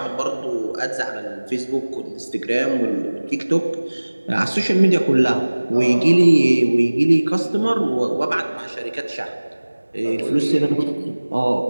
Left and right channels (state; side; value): inverted; both; correlation -1.00